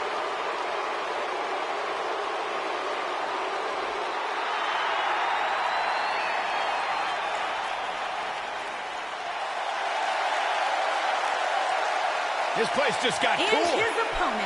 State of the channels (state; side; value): identical; both; correlation 1.00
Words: This place just got And cool. his